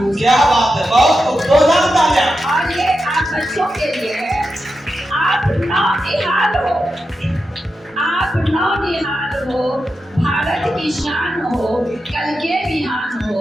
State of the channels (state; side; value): normal; both; correlation 0.89